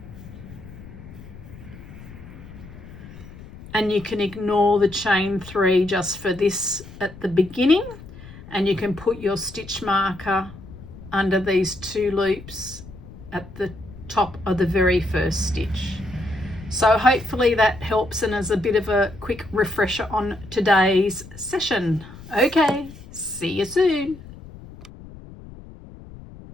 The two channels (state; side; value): noise; left; rumble, 16 dB below the sound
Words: And you can ignore the chain 3 just for this at the beginning, and you can put your stitch marker under these 2 loops at the top of the very first stitch. So hopefully that helps and is a bit of a quick refresher on today's session. Okay, see you soon.